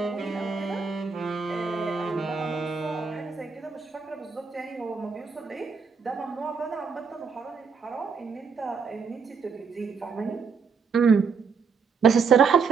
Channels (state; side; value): quieter; left; 5.5 dB